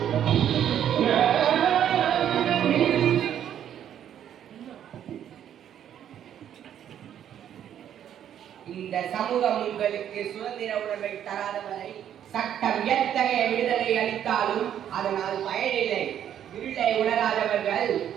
இந்த சமூகம் உங்களுக்கு சுதந்திர உணர்வை தராத வரை சட்டம் எத்தகைய விடுதலை அளித்தாலும் அதனால் பயனில்லை. இருளை உணராதவர்கள்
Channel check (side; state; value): left; quieter; 10.0 dB